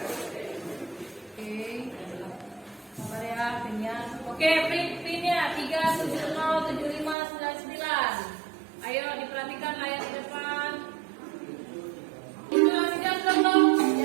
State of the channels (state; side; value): drops out; left; at 7.2 s